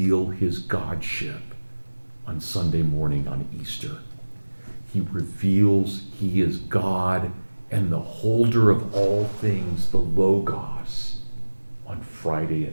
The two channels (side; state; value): both; inverted; correlation -1.00